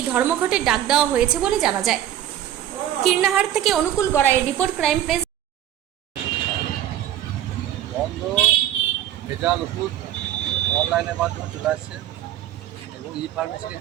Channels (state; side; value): quieter; left; 11.6 dB